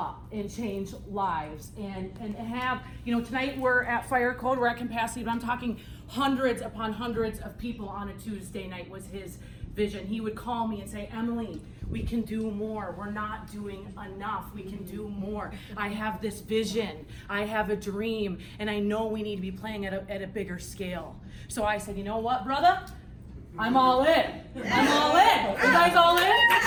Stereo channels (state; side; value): identical; both; correlation 1.00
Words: and change lives and have, tonight we're at Fire Code, we're at capacity, but I'm talking hundreds upon hundreds of people on a Tuesday night was his vision. He would call me and say, Emily, we can do more. We're not doing enough. We can do more. I have this vision. I have a dream, and I know we need to be playing at a bigger scale. So I said, you know what, brother? I'm all in. I'm all in. You guys all in?